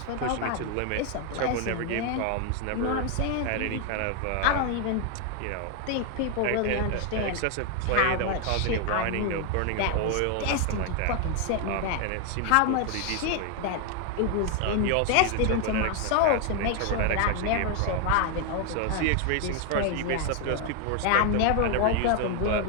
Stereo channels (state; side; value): different; both; correlation 0.00